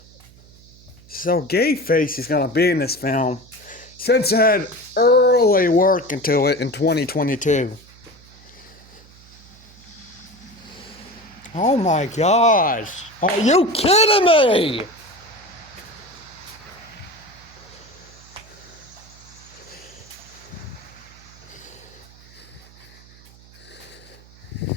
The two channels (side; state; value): right; noise; hum, 24 dB below the sound